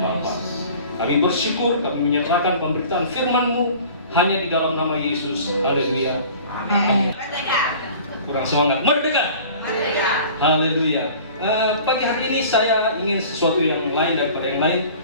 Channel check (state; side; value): inverted; both; correlation -0.45